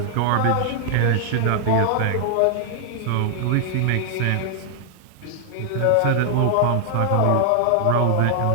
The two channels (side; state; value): both; different; correlation -0.01